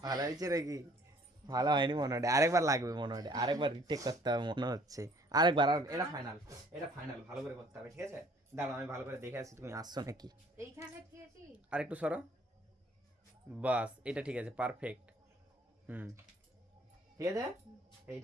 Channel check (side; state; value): both; normal; correlation 0.57